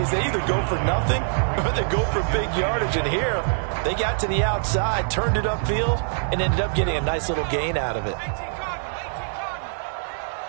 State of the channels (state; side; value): silent; left; 63 dB below the other